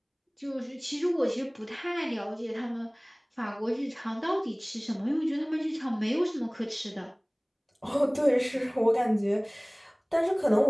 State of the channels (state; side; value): identical; both; correlation 1.00